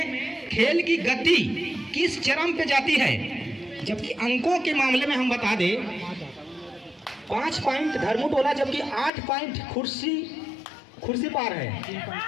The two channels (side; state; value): right; drops out; at 9.1 s